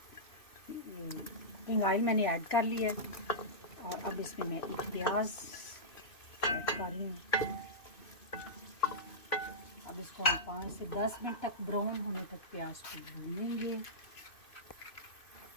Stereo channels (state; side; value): late; right; 2.6 ms